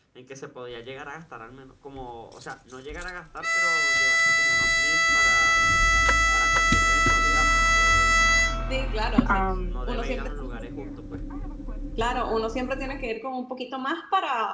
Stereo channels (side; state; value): both; identical; correlation 1.00